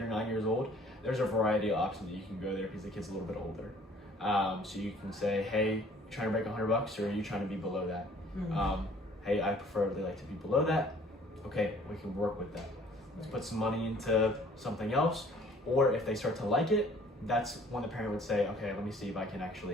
9 years old. There's a variety of options that you can go there, because the kid's a little bit older. So you can say, hey, you trying to break $100, or are you trying to be below that? Hey, I preferably like to be below that. Okay, we can work with that. Let's put some money into something else. Or if they start to like it, that's when the parent would say, okay, let me see if I can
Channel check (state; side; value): normal; both; correlation 0.55